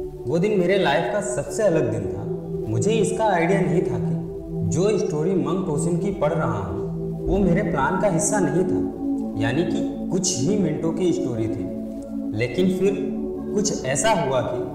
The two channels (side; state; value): both; identical; correlation 1.00